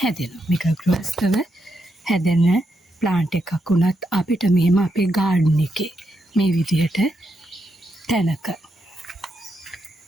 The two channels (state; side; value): normal; both; correlation 0.82